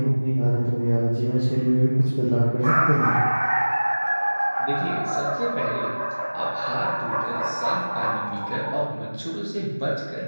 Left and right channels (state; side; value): inverted; both; correlation -1.00